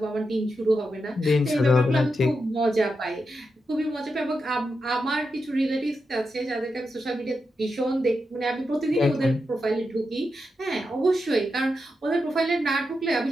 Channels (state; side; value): normal; both; correlation 0.87